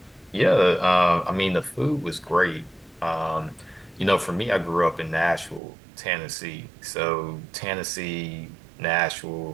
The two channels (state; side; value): drops out; left; at 5.6 s